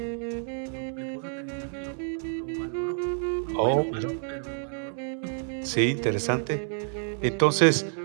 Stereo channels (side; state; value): left; silent; 59 dB below the other